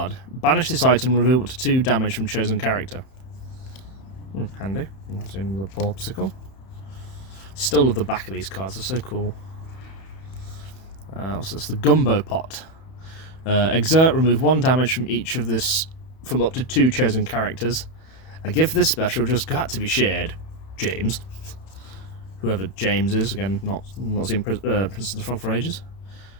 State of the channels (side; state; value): right; late; 31 ms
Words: Banish this item, remove up to 2 damage from chosen character. Handy. That's in the Porsicle. Still love the back of these cards, they're so cool. So it's the Gumbo Pot. Exert, remove 1 damage from each of this, from up to 2 chosen characters. A gift this special just got to be shared. James. Whoever James is, again, not seen Princess of the Frog for ages.